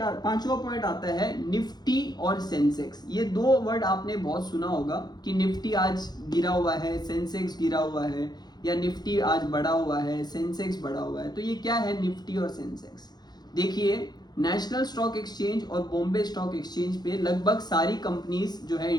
पॉइंट आता है निफ्टी और सेंसेक्स। ये दो वर्ड आपने बहुत सुना होगा कि निफ्टी आज गिरा हुआ है, सेंसेक्स गिरा हुआ है, या निफ्टी आज बढ़ा हुआ है, सेंसेक्स बढ़ा हुआ है। तो ये क्या है निफ्टी और सेंसेक्स? देखिए, नेशनल स्टॉक एक्सचेंज और बॉम्बे स्टॉक एक्सचेंज पे लगभग सारी कंपनीज जो है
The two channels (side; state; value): right; late; 0.20 ms